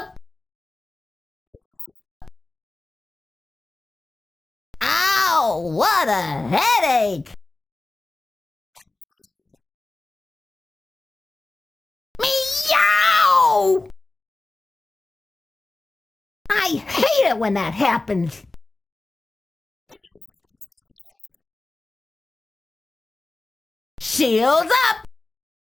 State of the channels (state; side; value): quieter; right; 3.1 dB